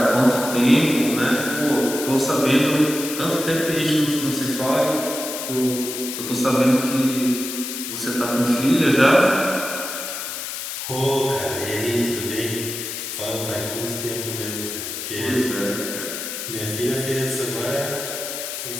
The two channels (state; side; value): noise; left; hiss, 6 dB below the sound